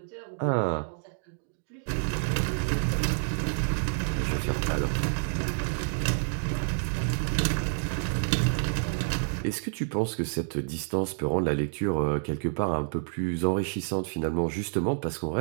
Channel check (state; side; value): silent; left; digital silence